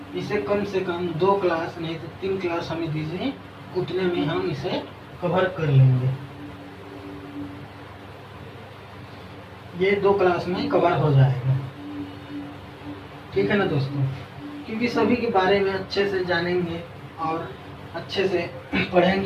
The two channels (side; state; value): both; identical; correlation 1.00